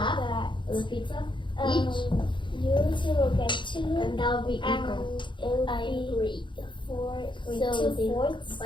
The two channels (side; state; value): right; late; 0.23 ms